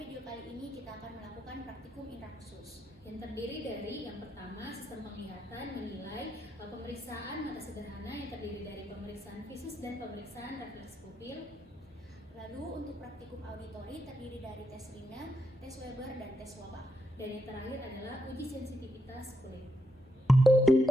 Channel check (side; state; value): both; normal; correlation 0.82